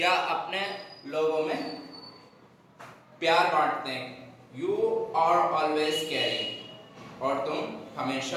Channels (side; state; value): both; identical; correlation 1.00